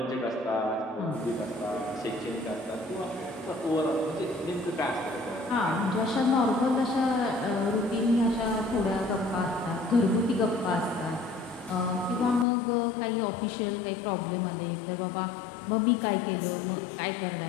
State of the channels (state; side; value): drops out; right; at 12.5 s